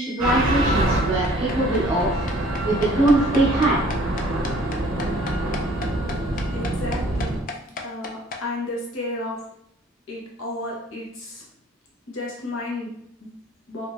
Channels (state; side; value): normal; both; correlation 0.55